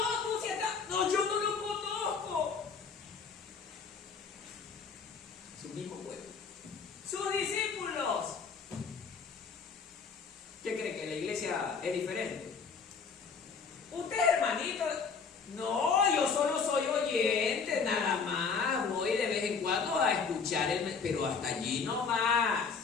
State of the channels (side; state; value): right; quieter; 5.5 dB